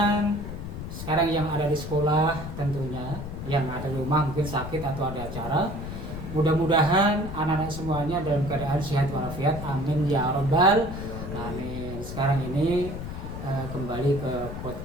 sekarang yang ada di sekolah tentunya, yang ada di rumah mungkin sakit atau ada acara. Mudah-mudahan anak-anak semuanya dalam keadaan sehat walafiat. Amin ya robbal amin. Sekarang ini kembali ke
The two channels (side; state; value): left; noise; rumble, 8 dB below the sound